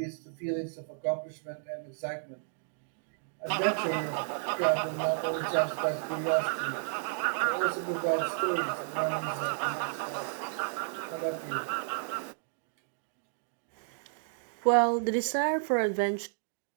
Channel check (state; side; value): silent; left; digital silence